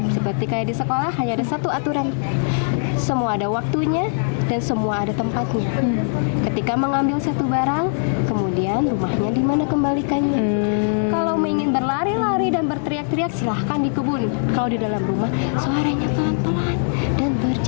Seperti kayak di sekolah hanya ada satu aturan. Semua ada waktunya dan semua ada tempatnya. Ketika mengambil satu barang, kemudian rumahnya di mana kembalikannya. Kalau ingin berlari-lari dan berteriak-teriak, silahkan di kebun. Kalau di dalam rumah, suaranya pelan-pelan dan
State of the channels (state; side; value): silent; right; digital silence